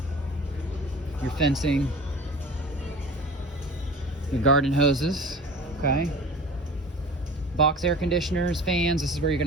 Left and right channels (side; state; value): both; normal; correlation 0.40